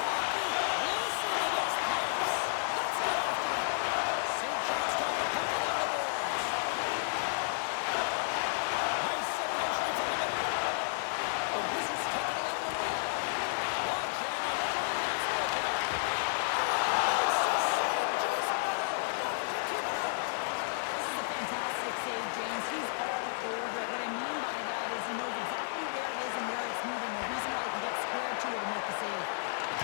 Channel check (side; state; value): right; silent; digital silence